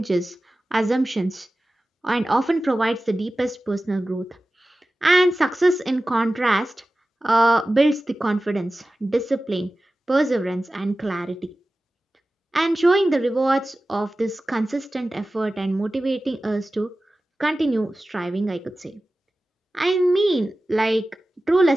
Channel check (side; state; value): both; normal; correlation 0.95